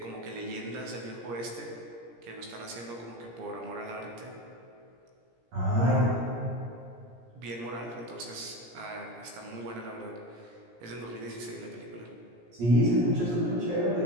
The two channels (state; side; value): late; left; 17 ms